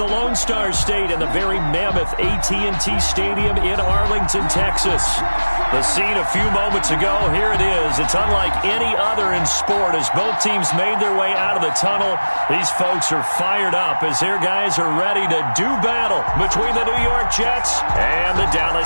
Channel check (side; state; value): both; inverted; correlation -1.00